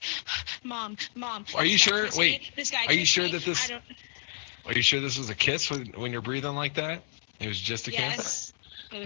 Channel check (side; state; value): right; silent; 58 dB below the other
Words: Mom. Are you this guy sure? kissed Wait. me. This guy Are you kissed sure me. that this? I don't. Are you sure this was a kiss when you're breathing like that? It was just a kiss. Yes.